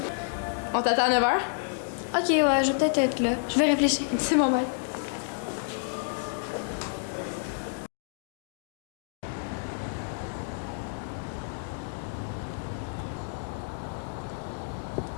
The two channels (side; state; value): right; silent; digital silence